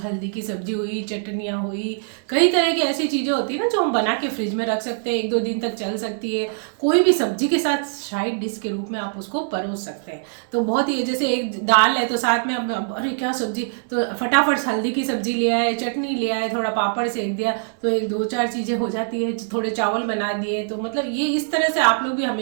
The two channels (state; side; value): silent; left; digital silence